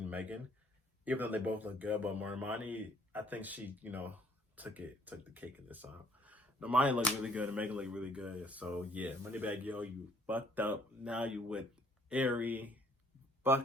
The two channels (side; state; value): both; normal; correlation 0.62